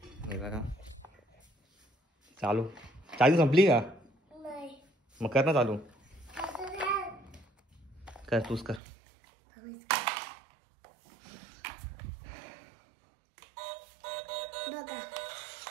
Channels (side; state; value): left; drops out; at 8.8 s